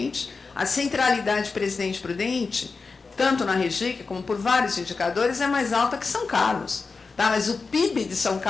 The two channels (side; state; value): right; quieter; 4.5 dB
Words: A centralidade de Presidente Prudente, tanto na Regica como por vários indicadores, é mais alta que São Carlos. Tá? Mas o PIB de São